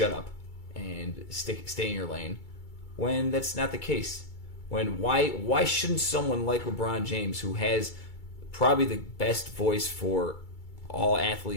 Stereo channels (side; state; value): right; late; 2.3 ms